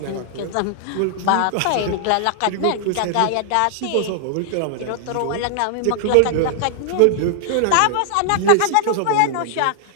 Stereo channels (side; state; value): both; different; correlation -0.01